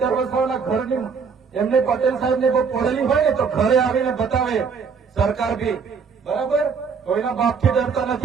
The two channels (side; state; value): left; quieter; 5.8 dB